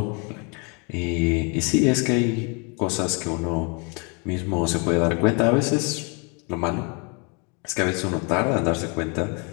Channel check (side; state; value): right; quieter; 33.7 dB